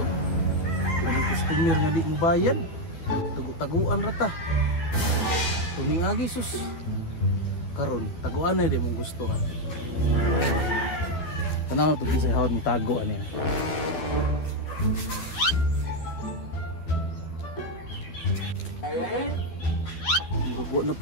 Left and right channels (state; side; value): late; right; 12 ms